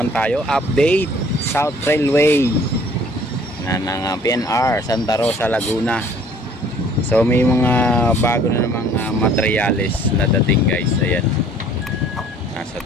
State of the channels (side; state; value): both; normal; correlation 0.55